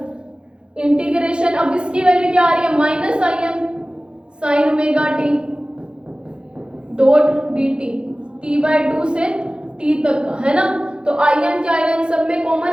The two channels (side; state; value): left; late; 0.052 ms